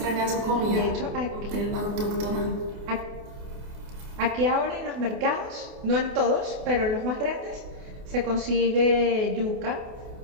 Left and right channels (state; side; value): late; left; 28 ms